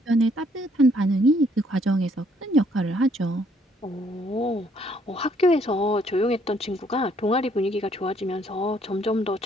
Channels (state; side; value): normal; both; correlation 0.66